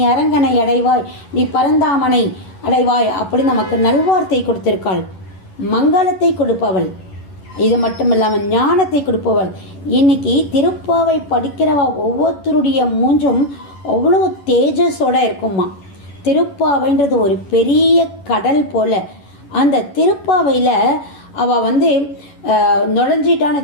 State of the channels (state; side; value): late; right; 11 ms